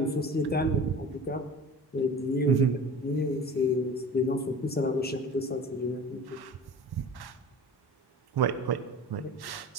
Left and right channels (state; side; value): normal; both; correlation 0.38